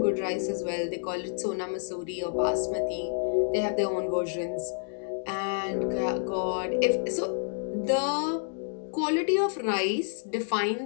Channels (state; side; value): silent; right; digital silence